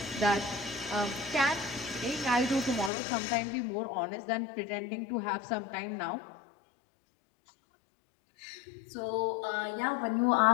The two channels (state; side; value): drops out; right; at 2.9 s